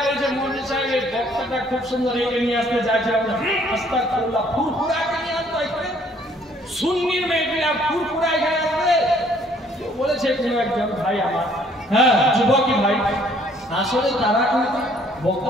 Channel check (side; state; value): both; normal; correlation 0.62